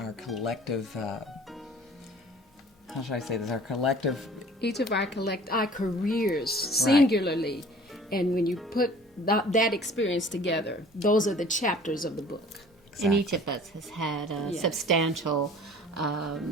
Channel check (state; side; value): normal; both; correlation 0.48